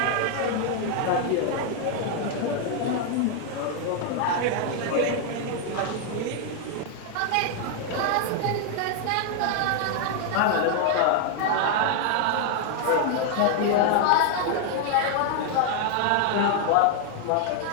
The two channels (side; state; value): both; different; correlation 0.00